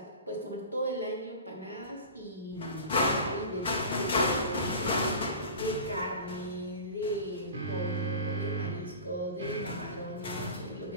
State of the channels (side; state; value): both; inverted; correlation -0.35